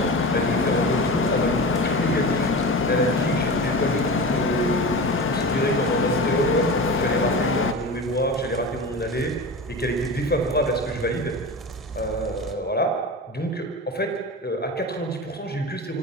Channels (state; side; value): normal; both; correlation 0.29